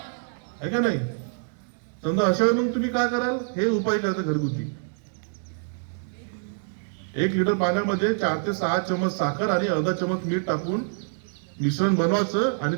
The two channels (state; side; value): silent; left; digital silence